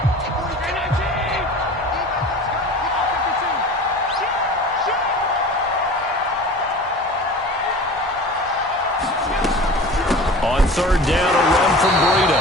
On 3rd down, a run from Breida.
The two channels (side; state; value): both; normal; correlation 0.38